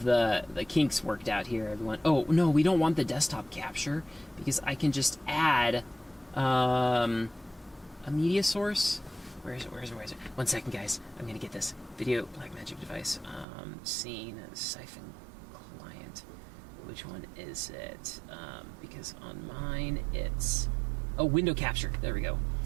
the kinks worked out here, everyone. Oh, no, we don't want the desktop capture because I can just add a media source. Where is it? 1 second, guys. I'm going to get this. Video Blackmagic device. Scene, siphon client. Which one is it? Because on mine, it's... Oh, window capture. There we go.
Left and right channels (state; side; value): drops out; left; at 13.5 s